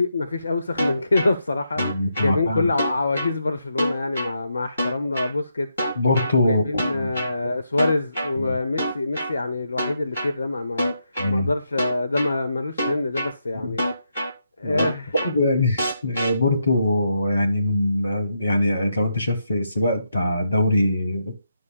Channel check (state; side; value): inverted; both; correlation -0.82